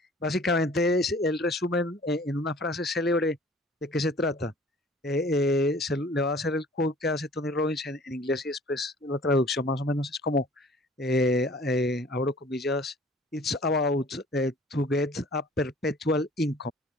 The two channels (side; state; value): both; normal; correlation 0.50